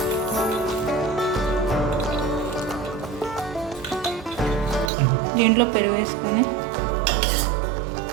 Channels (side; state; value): left; drops out; at 4.9 s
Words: దీంట్లో పెరుగు వేసుకొని